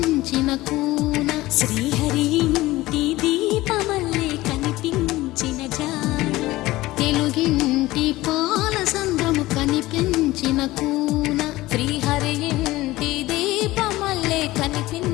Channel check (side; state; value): right; quieter; 18.1 dB